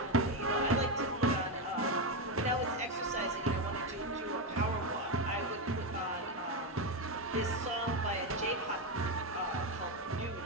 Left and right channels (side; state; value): both; normal; correlation 0.09